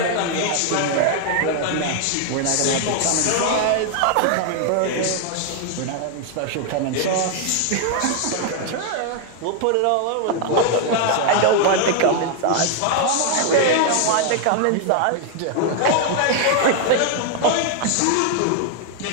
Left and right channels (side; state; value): both; different; correlation 0.00